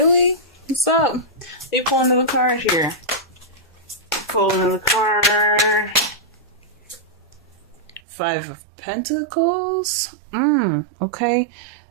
What's up? Let me pull another card here. Pull another card. Five of Pentacles. Okay.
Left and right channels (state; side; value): drops out; left; at 8.0 s